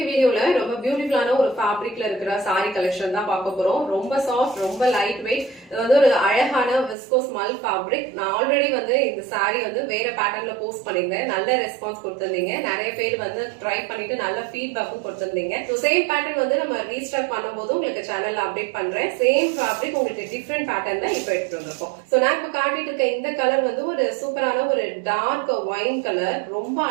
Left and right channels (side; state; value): left; drops out; at 7.0 s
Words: வீடியோல ரொம்ப பியூட்டிஃபுல்லான ஒரு ஃபேப்ரிக்ல இருக்கிற saree collection தான் பார்க்க போறோம். ரொம்ப சாஃப்ட், ரொம்ப லைட் வெயிட். இது வந்து ஒரு அழகான விஸ்கோஸ் மல் ஃபேப்ரிக். நான் ஆல்ரெடி வந்து இந்த saree வந்து வேற பேட்டர்ன்ல போஸ்ட் பண்ணிருந்தேன். நல்ல ரெஸ்பான்ஸ் கொடுத்திருந்தீங்க. நிறைய பேர் வந்து ட்ரை பண்ணிட்டு நல்ல ஃபீட்பேக்கும் கொடுத்திருந்தீங்க. சோ சேம் பேட்டர்ன் வந்து நம்ம ரீஸ்டாக் பண்ணும்போது உங்களுக்கு சேனல்ல அப்டேட் பண்றேன். சேம் ஃபேப்ரிக் உங்களுக்கு டிஃபரண்ட் பேட்டர்ன்ல இப்போ எடுத்துட்டு வந்திருக்கோம். சோ நான் இப்ப காட்டிட்டு இருக்க இந்த கலர் வந்து ஒரு சூப்பரான ஒரு டார்க் ஒயின் கலர். ரொம்ப